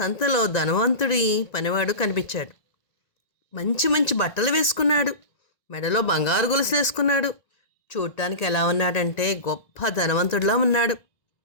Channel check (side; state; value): right; late; 1.9 ms